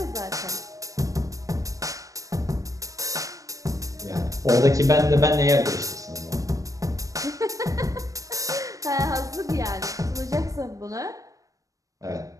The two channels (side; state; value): left; late; 0.16 ms